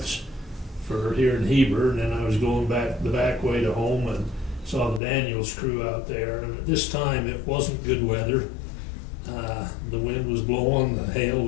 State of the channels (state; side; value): drops out; right; at 5.0 s